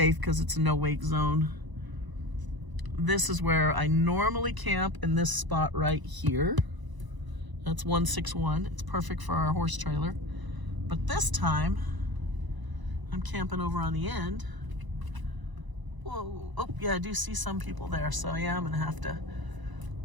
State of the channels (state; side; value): late; left; 1.0 ms